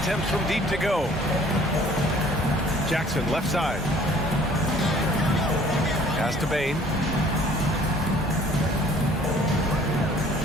from deep to go. Jackson left side. Pass to Bane.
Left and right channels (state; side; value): normal; both; correlation 0.54